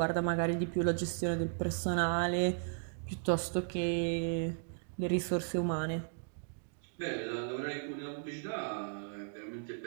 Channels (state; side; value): silent; left; digital silence